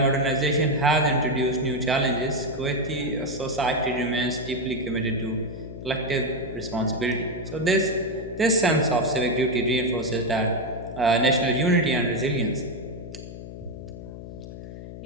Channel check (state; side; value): noise; left; hum, 11 dB below the sound